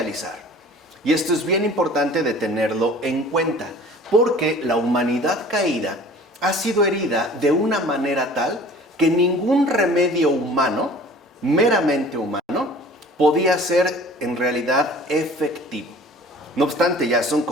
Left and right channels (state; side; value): normal; both; correlation 0.46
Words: Y esto es bien importante de tenerlo en cuenta, porque la humanidad caída ha sido herida de una manera tal que ningún remedio humano, meramente humano, podía ser en realidad efectivo. No obstante, ya son